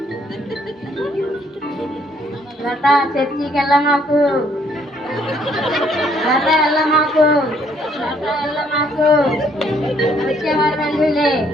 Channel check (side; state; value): both; normal; correlation 0.66